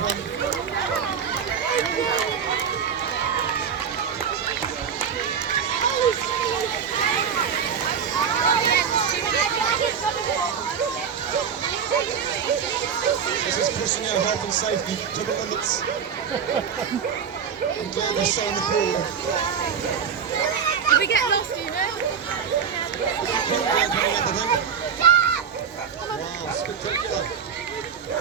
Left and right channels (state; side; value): quieter; left; 7.1 dB